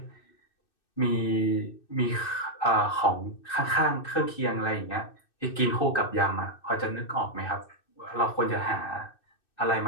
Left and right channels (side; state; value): right; late; 2.6 ms